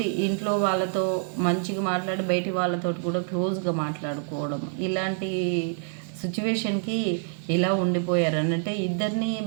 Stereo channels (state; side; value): silent; left; digital silence